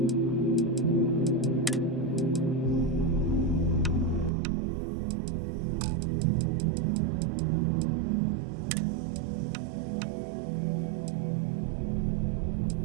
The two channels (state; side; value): drops out; left; at 4.3 s